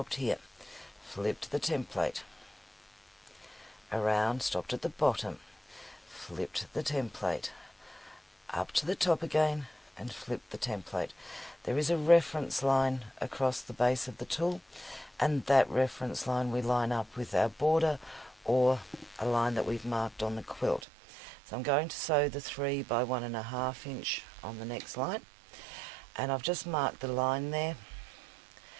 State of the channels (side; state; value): left; drops out; at 20.8 s